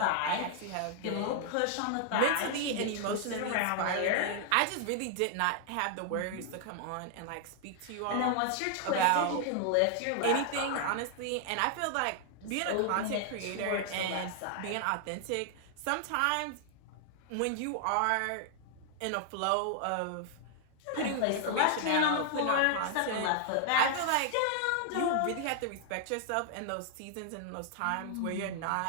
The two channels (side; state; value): both; different; correlation 0.00